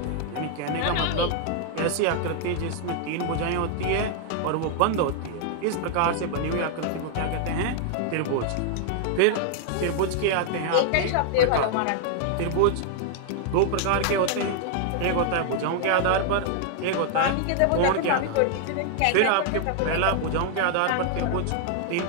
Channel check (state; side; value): different; both; correlation 0.00